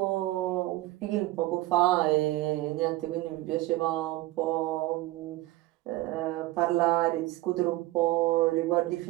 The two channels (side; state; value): left; quieter; 17.6 dB